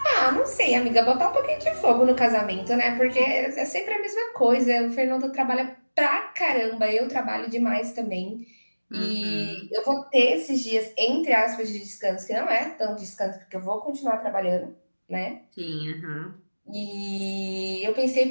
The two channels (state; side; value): inverted; both; correlation -1.00